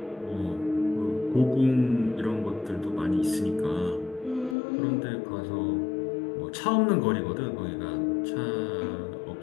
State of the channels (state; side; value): drops out; right; at 4.5 s